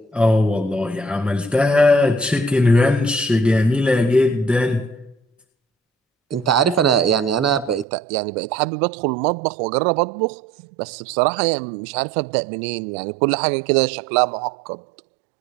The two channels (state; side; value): drops out; left; at 7.9 s